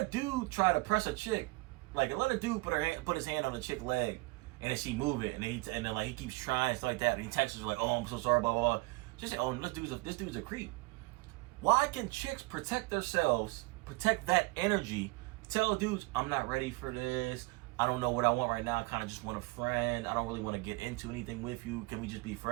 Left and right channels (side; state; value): left; quieter; 24.3 dB